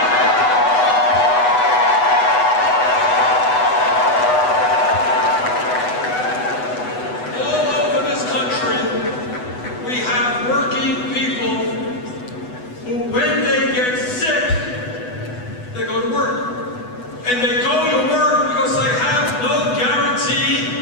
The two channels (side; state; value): right; late; 8.1 ms